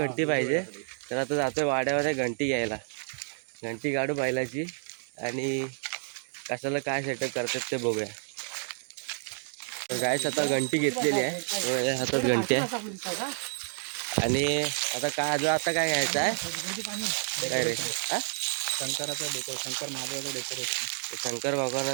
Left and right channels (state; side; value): silent; left; 58 dB below the other